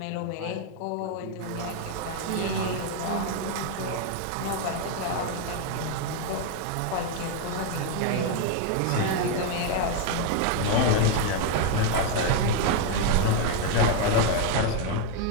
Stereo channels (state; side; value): different; both; correlation 0.01